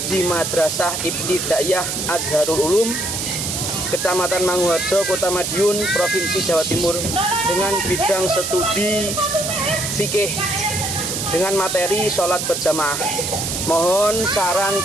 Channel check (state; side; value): noise; right; hiss, 3 dB below the sound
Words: di Madrasah Ibtidaiyah Azharul Ulum, Kecamatan Manguharjo, Kota Madiun, Provinsi Jawa Timur, dengan bidang studi fikih dengan materi sholat berjamaah. Mohon saran